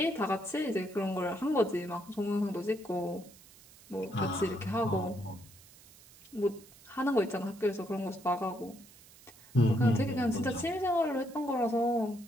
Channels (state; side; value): noise; right; hiss, 23 dB below the sound